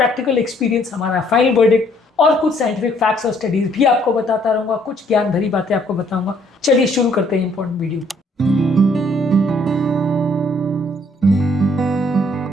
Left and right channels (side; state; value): both; normal; correlation 0.65